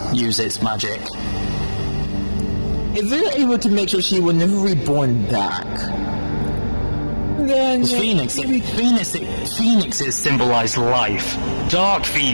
its magic. If they're able to make sure she will never be reborn back, then Phoenixes symbolize life. Dark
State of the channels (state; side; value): inverted; both; correlation -1.00